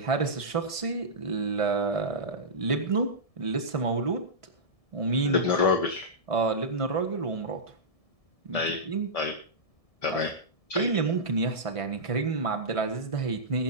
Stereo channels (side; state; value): right; late; 1.7 ms